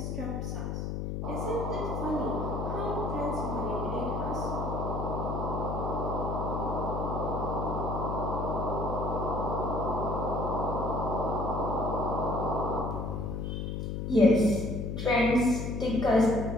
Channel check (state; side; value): noise; left; hum, 3 dB below the sound